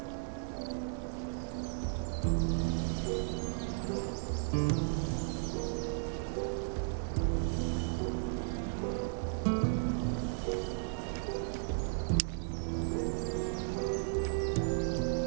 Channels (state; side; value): silent; left; digital silence